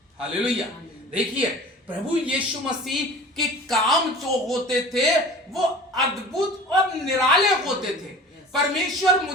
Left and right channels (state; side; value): normal; both; correlation 0.41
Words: हालेलुया। देखिए, प्रभु यीशु मसीह के काम जो होते थे वो अद्भुत और निराले होते थे। परमेश्वर